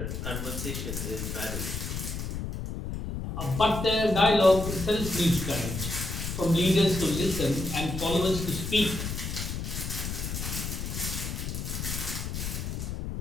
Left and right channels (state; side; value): noise; left; rumble, 4 dB below the sound